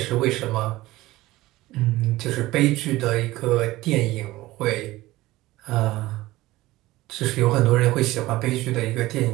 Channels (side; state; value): left; quieter; 18.0 dB